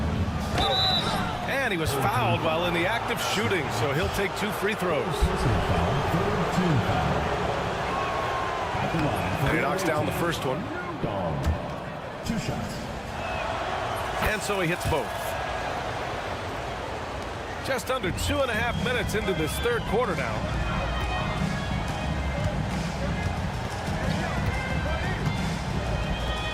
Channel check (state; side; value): identical; both; correlation 1.00